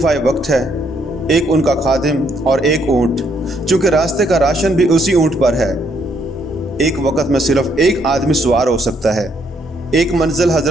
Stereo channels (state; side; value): normal; both; correlation 0.71